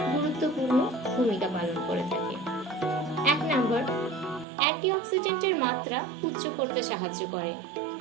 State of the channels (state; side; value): drops out; left; at 4.5 s